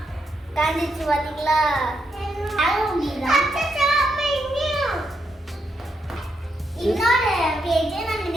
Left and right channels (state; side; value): normal; both; correlation 0.80